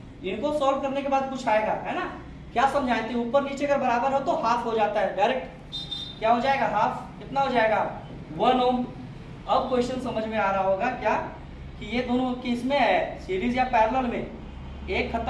इनको सॉल्व करने के बाद कुछ आएगा, है ना। क्या समझाए थे, ऊपर नीचे अगर बराबर हो तो हाफ हो जाता है, डायरेक्ट क्या हो जाएगा हाफ, कितना हो जाएगा 1 ओम। अब क्वेश्चन समझ में आ रहा होगा क्या कि ये दोनों किस में है, सीरीज या पैरेलल में, एक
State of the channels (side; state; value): both; identical; correlation 1.00